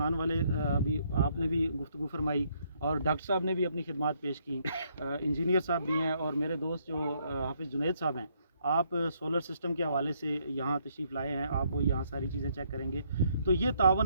वाले अभी आपने भी गुफ्तगू फरमाई और डॉक्टर साहब ने भी अपनी खिदमत पेश की, इंजीनियर साहब भी हैं और मेरे दोस्त जो हाफिज़ जुनैद साहब हैं, आप सोलर सिस्टम के हवाले से यहाँ तशरीफ़ लाए हैं, आप वो यहाँ सारी चीज़ें चेक करेंगे। तो ये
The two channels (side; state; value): both; inverted; correlation -0.71